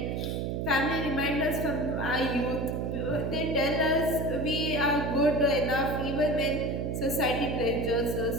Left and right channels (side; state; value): right; noise; hum, 1 dB below the sound